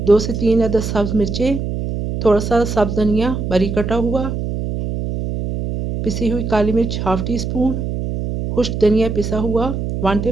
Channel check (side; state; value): right; noise; hum, 4 dB below the sound